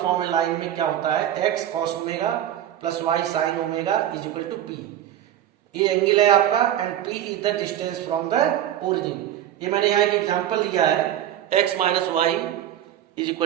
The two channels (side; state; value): left; quieter; 11.6 dB